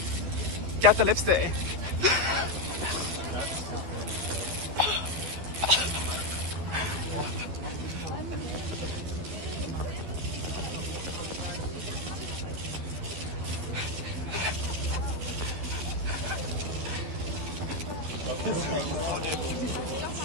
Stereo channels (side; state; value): left; late; 12 ms